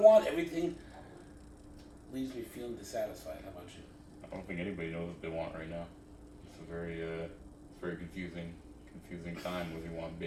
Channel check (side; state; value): both; identical; correlation 1.00